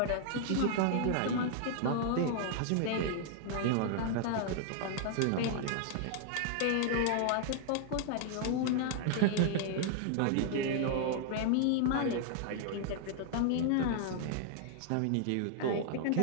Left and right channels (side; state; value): both; different; correlation 0.00